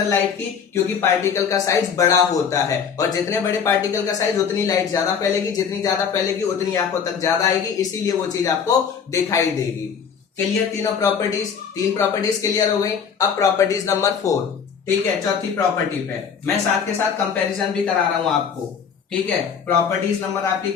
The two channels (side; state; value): right; quieter; 6.8 dB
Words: लाइट की, क्योंकि पार्टिकल का साइज बड़ा होता है, और जितने बड़े पार्टिकल का साइज उतनी लाइट ज्यादा फैलेगी, जितनी ज्यादा फैलेगी उतनी आंखों तक ज्यादा आएगी, इसीलिए वो चीज आपको दिखाई देगी। क्लियर, तीनों प्रॉपर्टीज, तीन प्रॉपर्टीज क्लियर हो गई। अब प्रॉपर्टीज नंबर 4, ठीक है, चौथी प्रॉपर्टी पे मैं साथ के साथ कंपैरिजन भी करा रहा हूं आपको, ठीक है। प्रॉपर्टीज नंबर आपकी